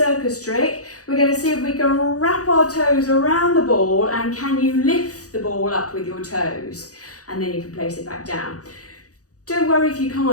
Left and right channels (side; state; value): right; late; 0.67 ms